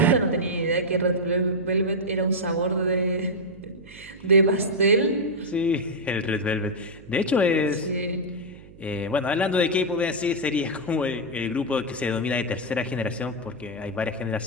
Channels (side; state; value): right; noise; hum, 21 dB below the sound